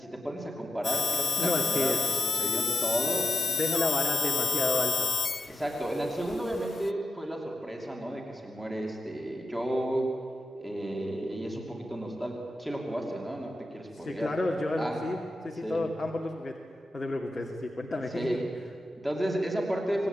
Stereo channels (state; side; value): normal; both; correlation 0.91